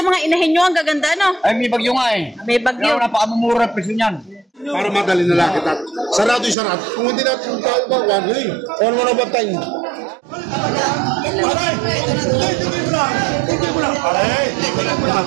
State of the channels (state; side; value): drops out; left; at 6.6 s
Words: yung mga inahin nyo, ang gaganda, no? Ay, may bagyo nga eh. May bagyo. Kaya napakamumura ang presyo niyan. Para madali na lang kita. Sarado yung sarado. Kung hindi natin tao ba, one ring. One mo na ba tayo?